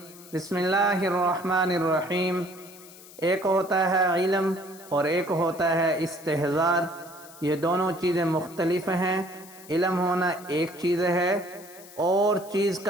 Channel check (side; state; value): left; noise; hiss, 20 dB below the sound